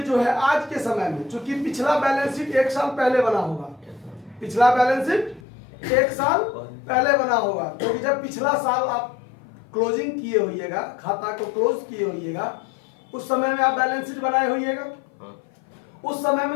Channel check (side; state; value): right; drops out; at 5.4 s